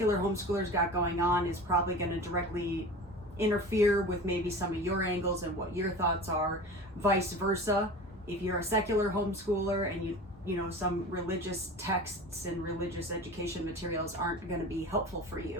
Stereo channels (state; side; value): normal; both; correlation 0.35